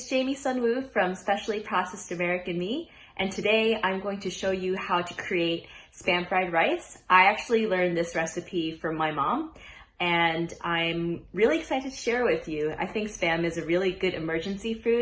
Jamie Sunwoo from Specially Processed American Me, and today I'm going to show you how to create Spam fried rice. I actually learned this recipe from my mom, and I'm really excited to share with you. I think Spam is a really good emergency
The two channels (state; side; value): identical; both; correlation 1.00